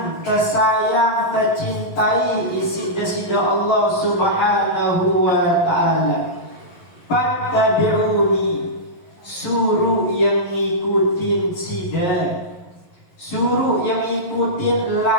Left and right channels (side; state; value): right; late; 11 ms